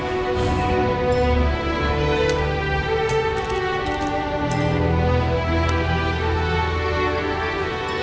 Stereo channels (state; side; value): identical; both; correlation 1.00